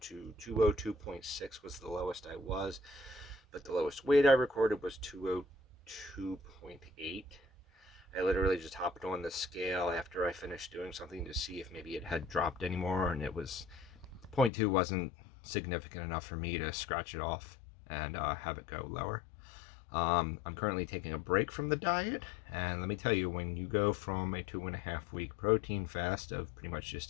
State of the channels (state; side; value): drops out; right; at 14.5 s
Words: 202.6 was the lowest I was. But the lowest weight I recorded was 202.8. I literally just hopped on the scale after I finished doing something to see if maybe it had dropped anymore, and it was, point 0.2 wasn't significant enough for me to scratch it off and have it go lower. I'm currently taking a break from the diet, and let me tell you, when you go from a 2.5 week protein fast of pretty much